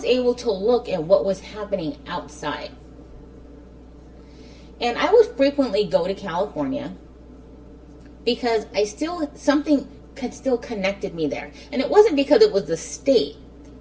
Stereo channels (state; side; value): identical; both; correlation 1.00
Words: able to look at what was happening outside. And I would frequently go to California because something still connected me there. And it wasn't because it was the state.